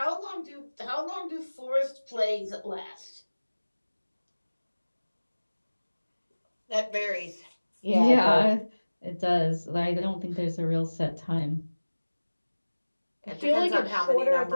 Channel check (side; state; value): both; inverted; correlation -1.00